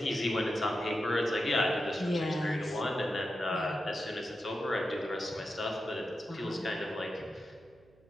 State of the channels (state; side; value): noise; right; hum, 29 dB below the sound